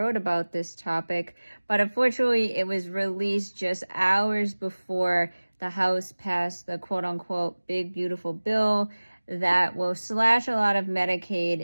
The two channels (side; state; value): both; inverted; correlation -1.00